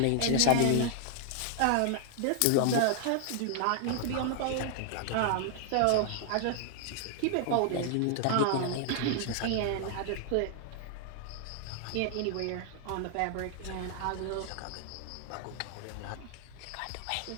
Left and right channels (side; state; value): both; different; correlation 0.00